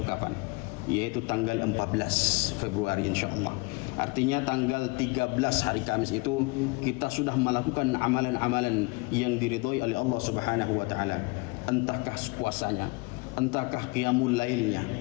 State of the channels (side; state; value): right; quieter; 26.4 dB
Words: kapan, yaitu tanggal 14 Februari insyaallah. Artinya tanggal 13 hari Kamis itu kita sudah melakukan amalan-amalan yang diridhai oleh Allah Subhanahu wa taala. Entahkah puasanya, entahkah qiyamul lailnya,